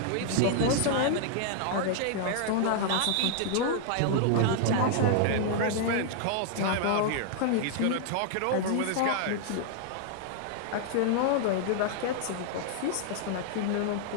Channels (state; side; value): different; both; correlation 0.00